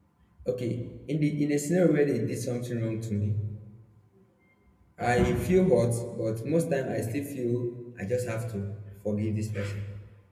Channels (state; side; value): identical; both; correlation 1.00